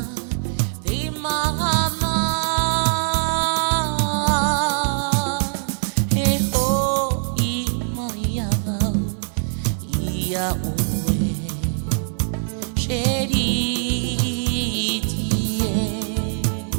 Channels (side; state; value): left; silent; 58 dB below the other